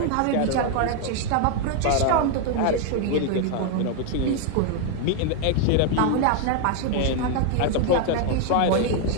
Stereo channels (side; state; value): both; different; correlation 0.01